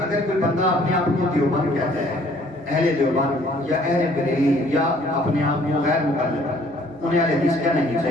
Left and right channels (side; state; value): both; normal; correlation 0.59